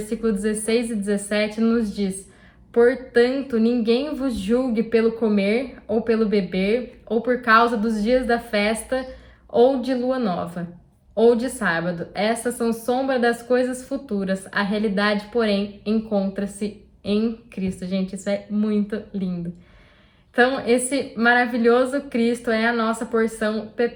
16 e 17, nos diz: portanto, ninguém vos julgue pelo comer ou pelo beber, ou por causa dos dias da festa, ou de lua nova, ou de sábado. Essas são sombra das coisas futuras. A realidade, porém, encontra-se em Cristo. Gente, isso é muito lindo. Então, esse maravilhoso Cristo é a nossa porção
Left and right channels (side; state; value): both; identical; correlation 1.00